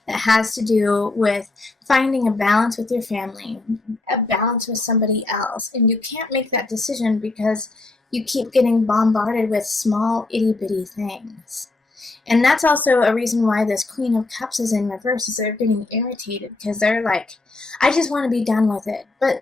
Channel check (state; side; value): quieter; right; 3.3 dB